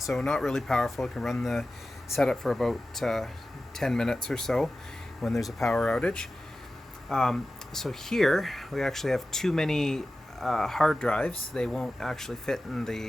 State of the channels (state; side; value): normal; both; correlation 0.94